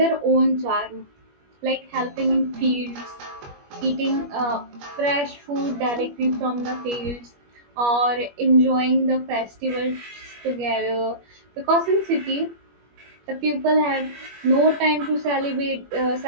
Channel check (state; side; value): late; left; 21 ms